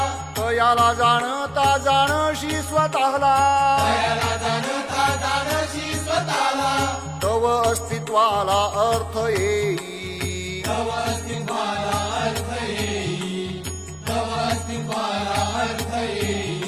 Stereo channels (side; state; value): right; noise; rumble, 27 dB below the sound